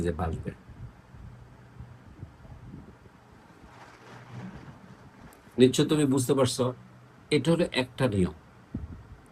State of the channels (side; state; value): both; identical; correlation 1.00